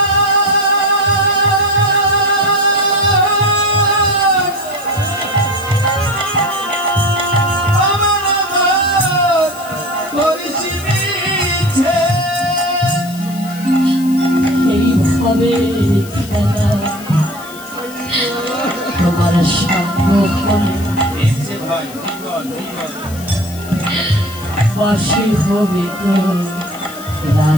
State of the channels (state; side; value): noise; left; hiss, 17 dB below the sound